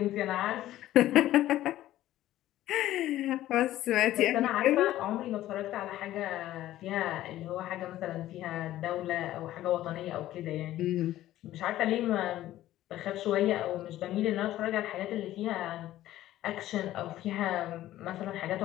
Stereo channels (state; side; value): quieter; right; 14.2 dB